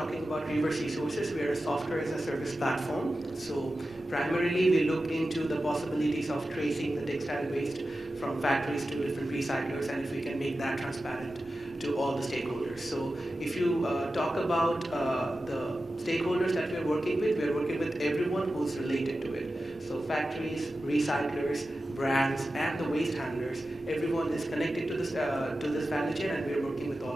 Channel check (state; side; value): normal; both; correlation 0.93